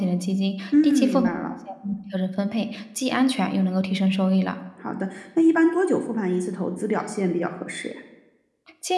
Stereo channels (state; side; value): identical; both; correlation 1.00